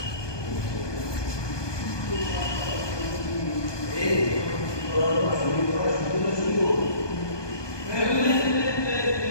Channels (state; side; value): late; right; 1.2 ms